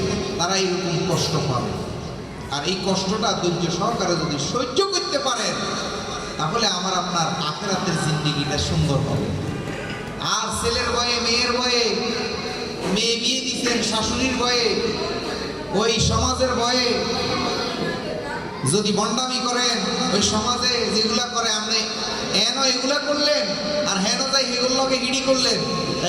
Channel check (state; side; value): identical; both; correlation 1.00